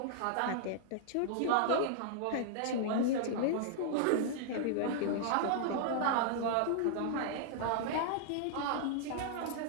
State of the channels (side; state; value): both; different; correlation -0.01